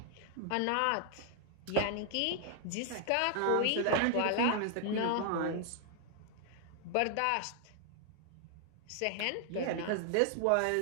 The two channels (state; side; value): different; both; correlation 0.00